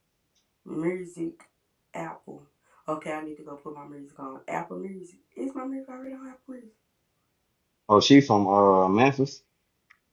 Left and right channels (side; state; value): both; identical; correlation 1.00